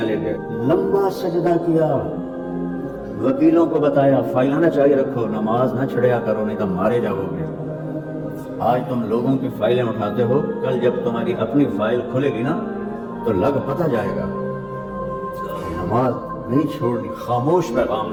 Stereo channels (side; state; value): both; identical; correlation 1.00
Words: گئے، لمبا سجدہ کیا. وکیلوں کو بتایا فائلیں نہ چاہیے رکھو، نماز نہ چھڑیا کرو نہیں تو مارے جاؤ گے. آج تم لوگوں کی فائلیں اٹھاتے ہو، کل جب تمہاری اپنی فائل کھلے گی نا تو لگ پتہ جائے گا. نماز نہیں چھوڑنی، خاموش پیغام